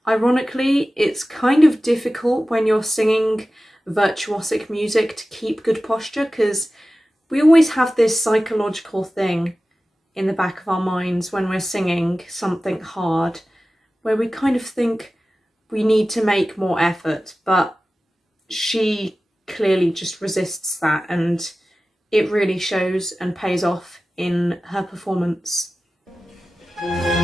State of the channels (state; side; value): normal; both; correlation 0.95